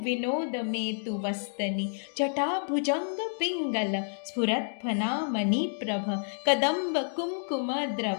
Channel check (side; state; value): right; silent; digital silence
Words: विनोद मेतु वस्तनि। जटाभुजंग पिंगल स्फुरत्फना मणिप्रभ कदंब कुमकुम